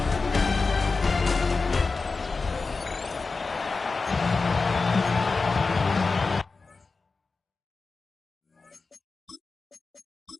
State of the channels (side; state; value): right; quieter; 4.1 dB